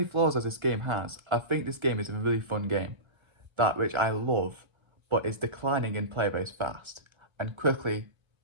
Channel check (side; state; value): left; late; 1.3 ms